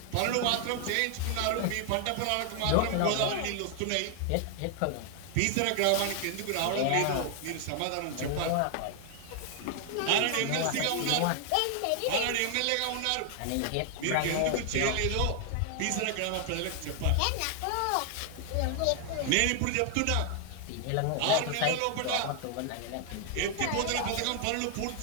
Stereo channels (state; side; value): different; both; correlation 0.00